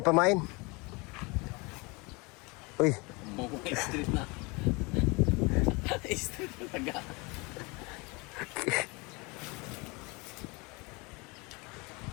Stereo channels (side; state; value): right; quieter; 27.3 dB